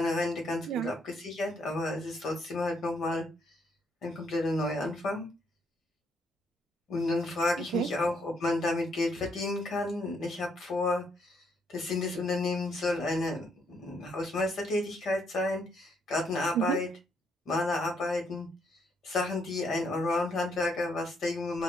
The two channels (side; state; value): both; normal; correlation 0.73